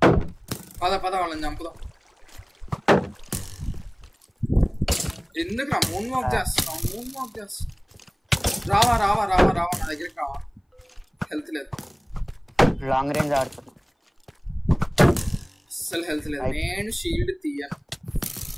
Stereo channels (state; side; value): identical; both; correlation 1.00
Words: పద వాళ్ళని చంపుదాం. ఎందుకు రా మూన్ వాక్ చేస్తున్నావు? రావా నా దగ్గరికి రావా. హెల్త్ లేదు. లాంగ్ రేంజ్ ఆడుతున్నా. అస్సలు హెల్త్ లేదు. నేను షీల్డ్ తీయను.